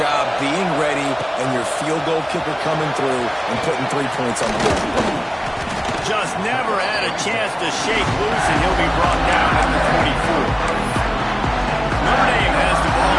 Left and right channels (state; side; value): identical; both; correlation 1.00